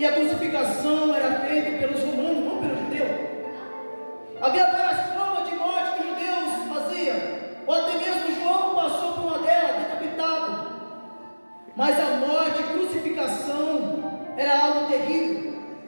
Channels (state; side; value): inverted; both; correlation -1.00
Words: a crucificação era feita pelos romanos, não pelos judeus. Havia várias formas de morte que os judeus faziam, ou até mesmo João passou por uma delas, decapitado. Mas a morte, crucificação, era algo terrível.